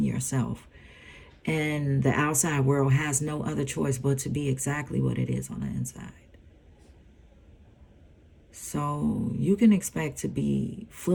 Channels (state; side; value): identical; both; correlation 1.00